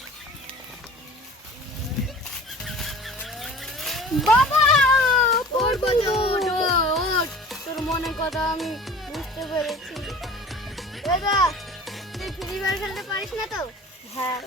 বাবা তোর মনে কথা আমি বুঝতে পেরেছি দাদা তুই ফ্রি ফায়ার খেলতে পারিস না তো হ্যাঁ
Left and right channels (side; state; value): both; normal; correlation 0.43